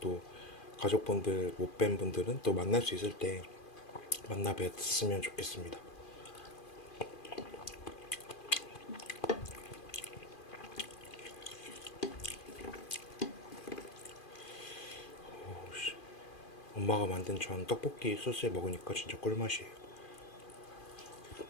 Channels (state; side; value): late; right; 2.4 ms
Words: 또 가족분들 못 뵌 분들은 또 만날 수 있을 때 만나 뵀으면 좋겠습니다. 엄마가 만든 전 떡볶이 소스에 먹으니까 진짜 꿀맛이에요.